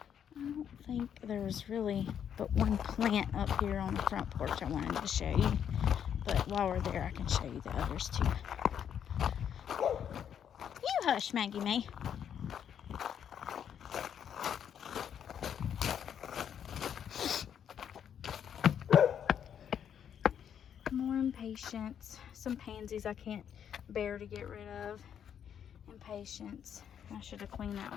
don't think there's really but one plant up here on the front porch I wanted to show you. But while we're there, I can show you the others too. You hush, Maggie May. More impatiens. Some pansies I can't bear to get rid of. Impatiens. I should have cleaned that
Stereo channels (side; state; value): right; quieter; 8.7 dB